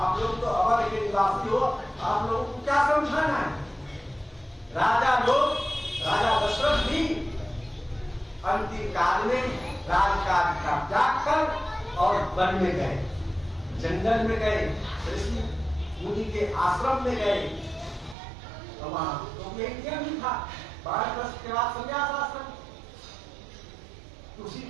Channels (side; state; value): left; drops out; at 18.2 s